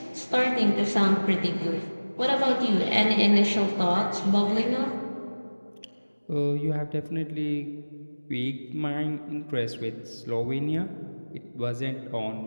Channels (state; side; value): inverted; both; correlation -1.00